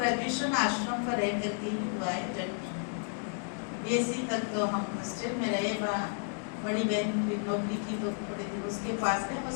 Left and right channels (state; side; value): silent; right; 56 dB below the other